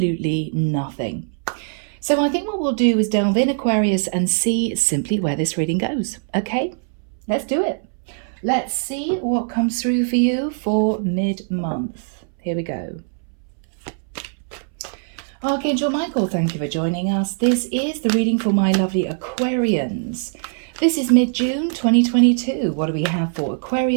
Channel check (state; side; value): silent; left; 63 dB below the other